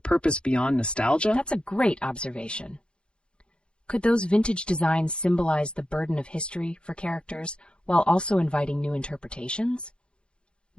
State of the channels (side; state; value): right; late; 0.055 ms